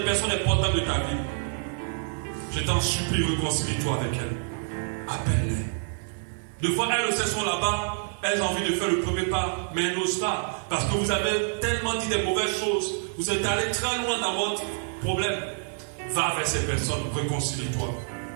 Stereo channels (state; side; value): silent; left; digital silence